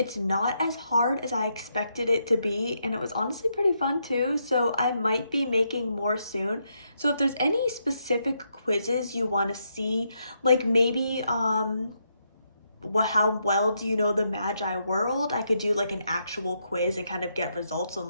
not as hard as I expected it to be, and it was honestly pretty fun too, so I might be making more soon. So if there's any specific quizzes you want to see, like maybe how well do you know the Mageye world? I could do like an actual quiz and kind of get results on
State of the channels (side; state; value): both; inverted; correlation -0.79